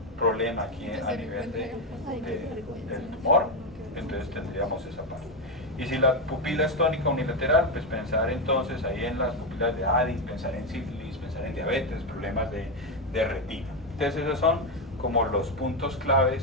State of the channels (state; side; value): normal; both; correlation 0.08